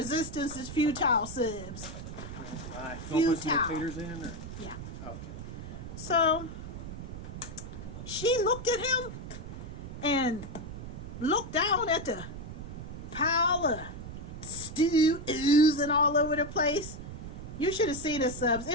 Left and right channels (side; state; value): right; noise; rumble, 10 dB below the sound